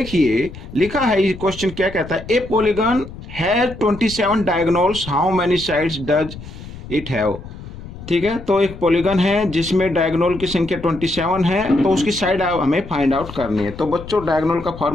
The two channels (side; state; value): left; noise; rumble, 14 dB below the sound